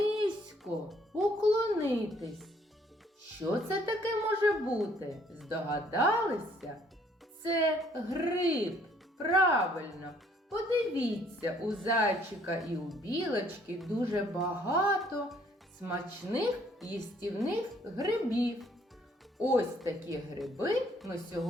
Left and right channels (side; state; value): both; normal; correlation 0.63